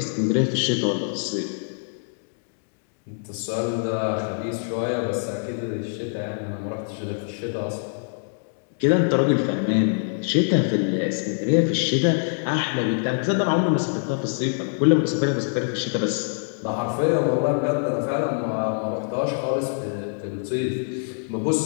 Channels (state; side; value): silent; right; digital silence